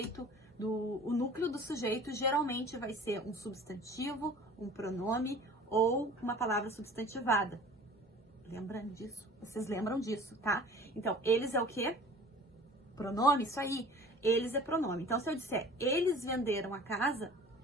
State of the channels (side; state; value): both; normal; correlation 0.44